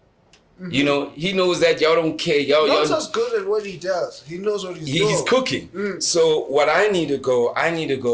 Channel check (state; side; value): identical; both; correlation 1.00